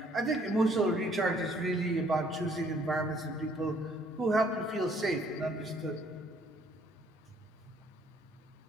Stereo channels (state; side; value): normal; both; correlation 0.63